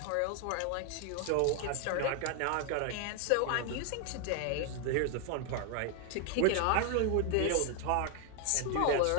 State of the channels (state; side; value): different; both; correlation 0.00